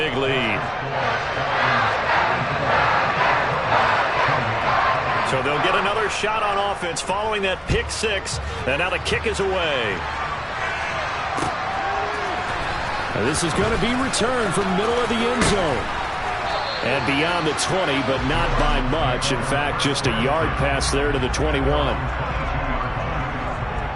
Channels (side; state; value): both; identical; correlation 1.00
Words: lead. So they'll get another shot on offense following that pick 6, and now the kick is away. Now this is going to be returned from middle of the end zone. And beyond the 20, but not by much. In fact, just a yard pass there to the 21.